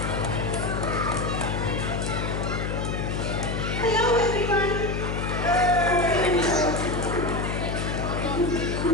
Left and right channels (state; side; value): noise; left; hum, 1 dB below the sound